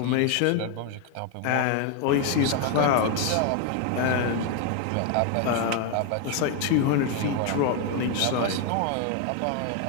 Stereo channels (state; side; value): different; both; correlation 0.01